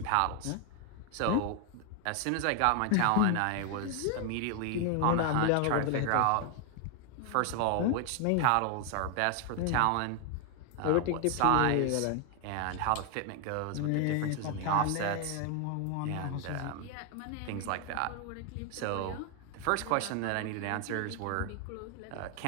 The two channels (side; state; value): both; different; correlation 0.01